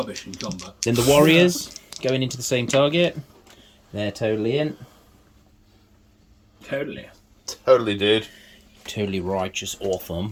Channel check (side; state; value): both; identical; correlation 1.00